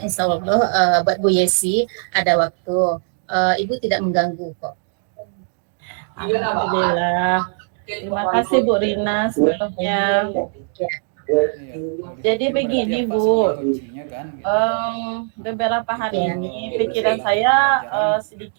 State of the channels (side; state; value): left; silent; digital silence